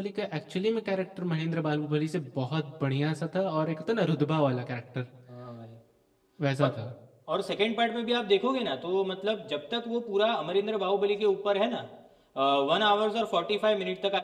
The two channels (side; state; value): both; identical; correlation 1.00